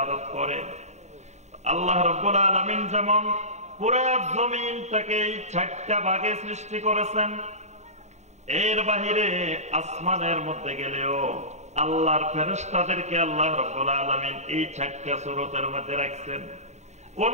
করে। আল্লাহ রাব্বুল আলামিন যেমন পুরা জমিনটাকে 4টা ভাগে সৃষ্টি করেছেন, এর বাহিরে আসমানের মধ্যে গেলেও আল্লাহর ফেরেশতাদেরকে আল্লাহ রাব্বুল আলামিন এই 4টা সূরতের মধ্যে রাখছেন। কোন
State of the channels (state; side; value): late; left; 0.33 ms